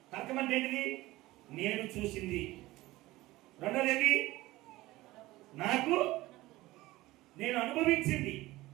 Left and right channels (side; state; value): left; quieter; 18.3 dB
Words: తర్కం అంటే ఏంటిది? నేను చూసింది. రెండోది ఏంటి? నాకు నేను అనుభవించింది.